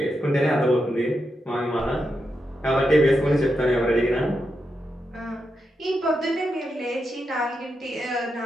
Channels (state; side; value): normal; both; correlation 0.86